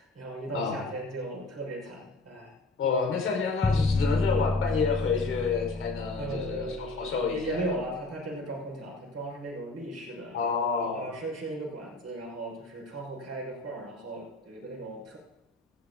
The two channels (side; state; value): right; quieter; 3.1 dB